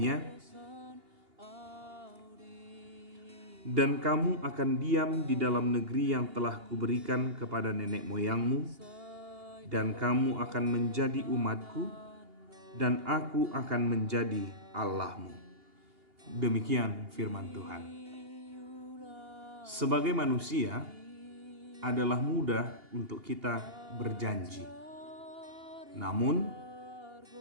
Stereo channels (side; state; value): left; late; 2.8 ms